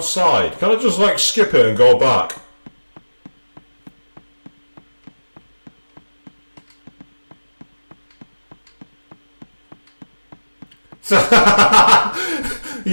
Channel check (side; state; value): both; inverted; correlation -1.00